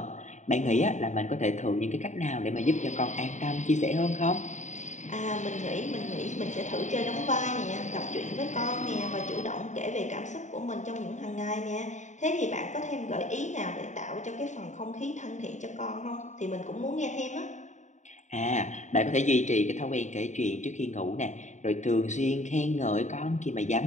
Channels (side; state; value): right; late; 0.34 ms